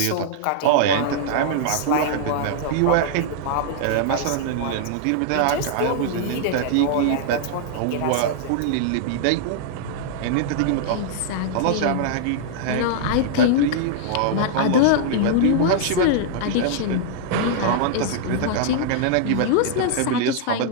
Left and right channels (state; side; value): different; both; correlation -0.01